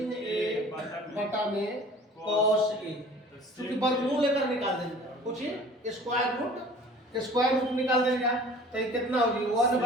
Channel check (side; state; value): both; normal; correlation 0.46